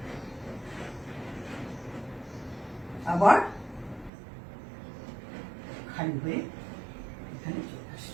আবার খালি হয়ে এখানে চলে আসে।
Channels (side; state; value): left; drops out; at 4.1 s